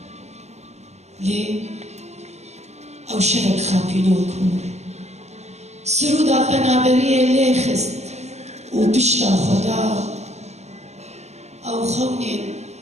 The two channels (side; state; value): left; late; 0.32 ms